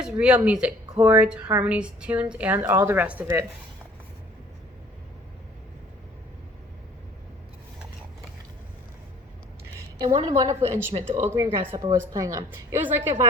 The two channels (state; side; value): normal; both; correlation 0.53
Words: real music, chords, harmonies, tunes, and all the rest of it. And what a wonderful instrument the old green grasshopper was playing on. It was like a